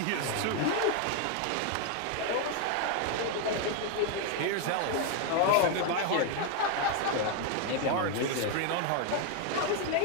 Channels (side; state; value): both; different; correlation 0.01